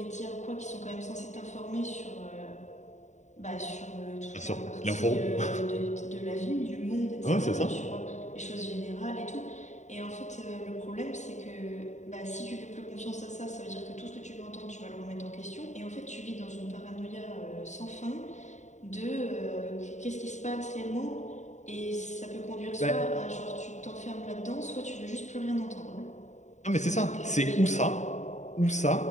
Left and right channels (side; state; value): right; late; 0.34 ms